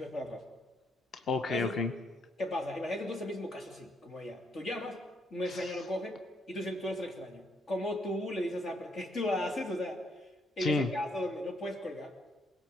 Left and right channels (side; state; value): both; normal; correlation 0.73